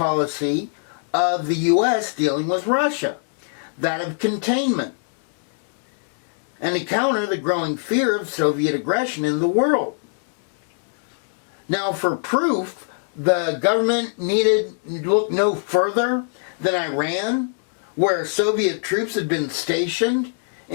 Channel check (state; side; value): silent; right; digital silence